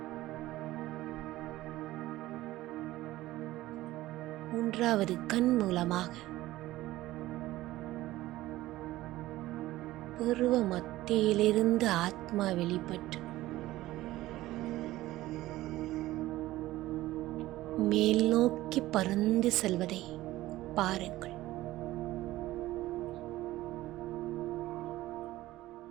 மூன்றாவது கண் மூலமாக புருவ மத்தியிலிருந்து ஆத்மா வெளிப்பட்டு மேல் நோக்கி பறந்து செல்வதை பாருங்கள்.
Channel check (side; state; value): left; quieter; 16.5 dB